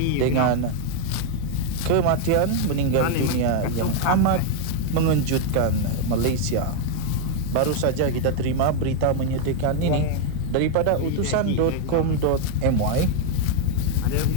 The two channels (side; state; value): both; different; correlation 0.00